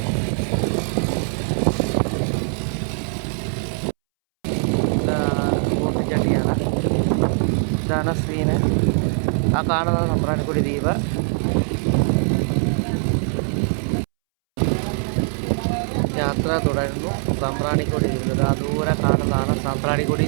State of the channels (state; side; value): silent; left; 64 dB below the other